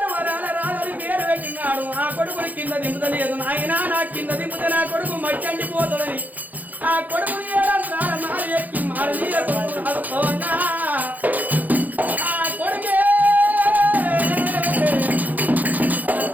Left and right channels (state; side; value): late; left; 0.082 ms